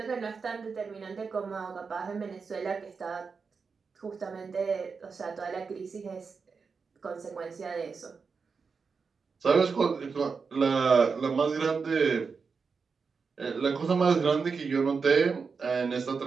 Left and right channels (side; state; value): left; quieter; 5.2 dB